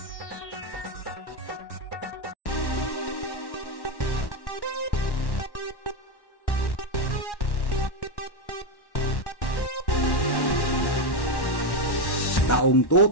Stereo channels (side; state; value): right; late; 1.1 ms